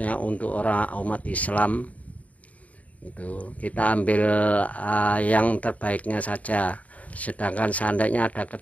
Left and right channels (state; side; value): late; right; 0.069 ms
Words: untuk umat Islam. Itu kita ambil yang terbaiknya saja. Sedangkan seandainya ada